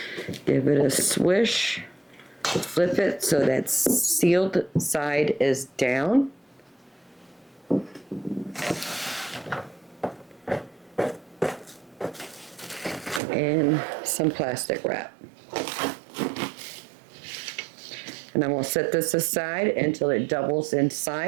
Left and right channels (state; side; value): drops out; left; at 13.2 s